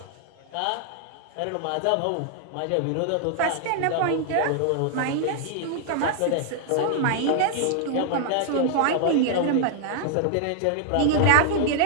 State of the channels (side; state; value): both; different; correlation 0.00